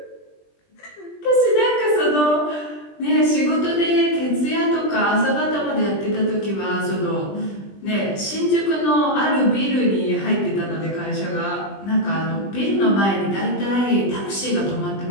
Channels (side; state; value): right; late; 20 ms